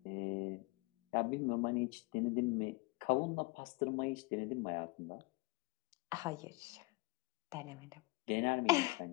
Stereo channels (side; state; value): right; quieter; 24.7 dB